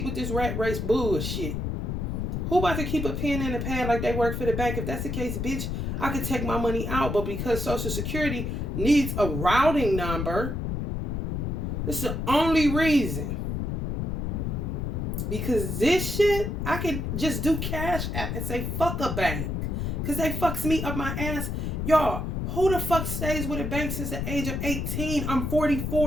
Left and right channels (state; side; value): noise; left; rumble, 2 dB below the sound